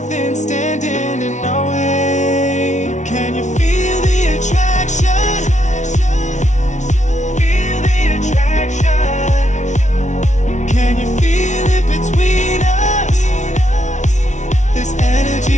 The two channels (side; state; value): right; late; 0.35 ms